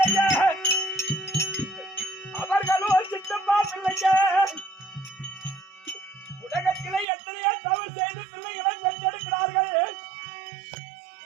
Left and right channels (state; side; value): drops out; left; at 7.1 s